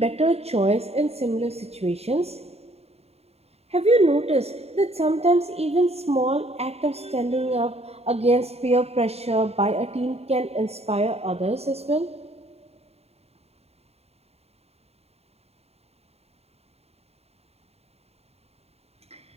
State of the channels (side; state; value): left; late; 0.30 ms